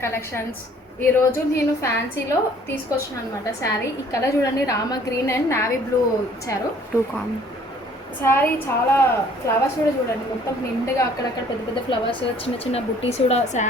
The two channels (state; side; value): normal; both; correlation 0.57